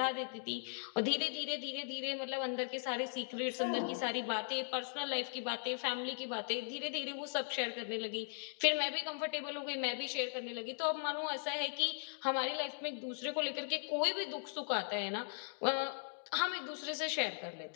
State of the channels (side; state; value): right; silent; digital silence